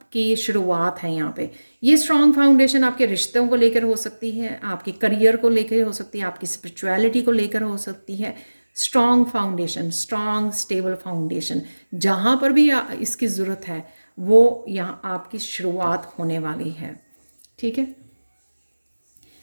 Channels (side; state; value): both; inverted; correlation -1.00